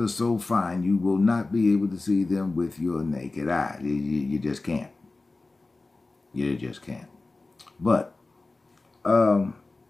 so fine, you will not be able to see them with your naked eye. You just can't. You just can't. But, do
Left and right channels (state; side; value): quieter; right; 3.4 dB